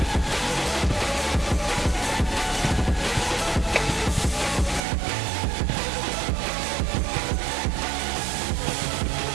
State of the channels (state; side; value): drops out; left; at 4.8 s